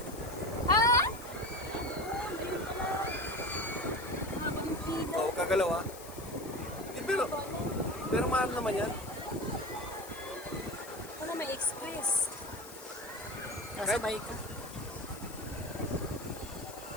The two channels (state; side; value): noise; left; hiss, 16 dB below the sound